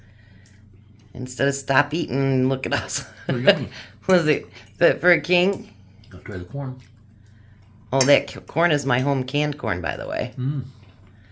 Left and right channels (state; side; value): identical; both; correlation 1.00